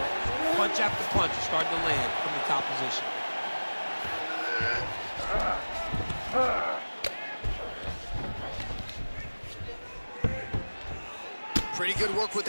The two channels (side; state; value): both; inverted; correlation -1.00